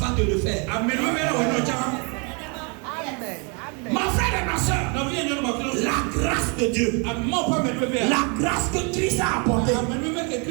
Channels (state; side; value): quieter; left; 34.2 dB